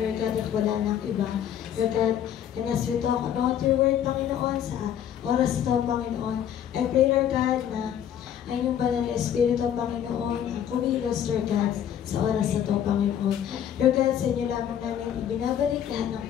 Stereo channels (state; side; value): quieter; right; 9.8 dB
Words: God, at wala nang iba. Lord God, and as we talk about your word, Panginoon, sa oras ito, Panginoon, I pray, Lord God, na ay yung banal na Espiritu, Panginoon, kumilos, Lord God, sa oras na ito, Panginoon. Lord God, sa inyo lamang namin ibinabalik lahat ng